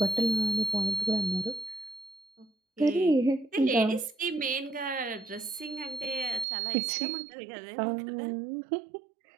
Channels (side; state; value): left; drops out; at 6.5 s